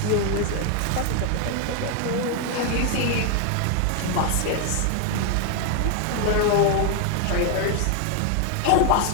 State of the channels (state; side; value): different; both; correlation 0.00